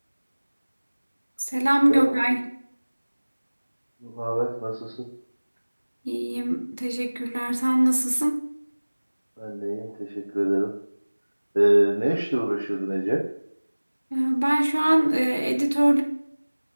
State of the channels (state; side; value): inverted; both; correlation -1.00